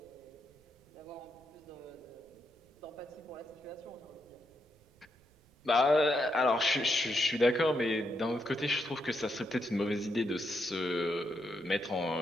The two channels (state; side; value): noise; right; rumble, 30 dB below the sound